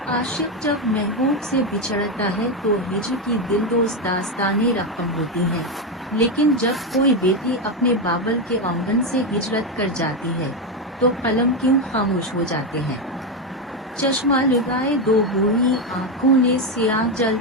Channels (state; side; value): normal; both; correlation 0.09